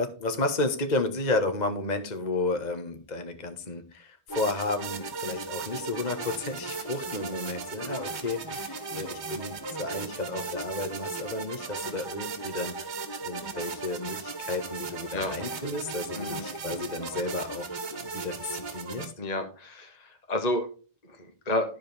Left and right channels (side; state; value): right; late; 1.1 ms